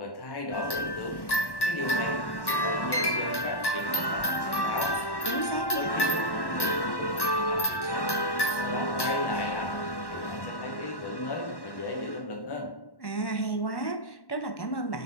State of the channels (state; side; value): late; right; 1.1 ms